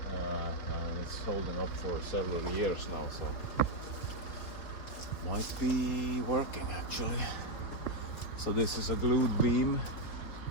and it's holding up for several years now, so might be working actually. So this is a glued beam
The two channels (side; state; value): right; late; 4.4 ms